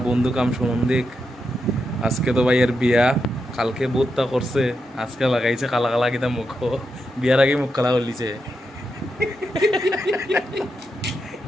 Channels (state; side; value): normal; both; correlation 0.85